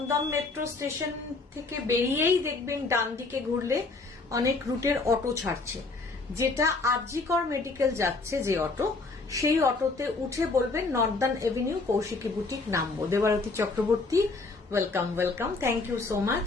মেট্রো স্টেশন থেকে বেরিয়েই দেখবেন ডান দিকে ঘুরলে অনেক রুটের অটো ছাড়ছে, যেটা আরজিকর মেডিকেল যাচ্ছে যে অটো, সেই অটোতে উঠে বলবেন নর্দার্ন এভিনিউ কৌশিকী বুটিক নামবো। Debarati Chakraborty, welcome, thank you so much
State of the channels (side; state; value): right; quieter; 3.6 dB